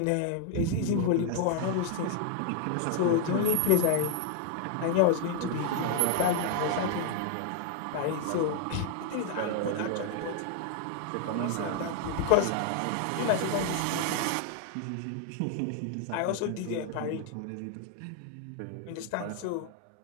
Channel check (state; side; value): different; both; correlation 0.00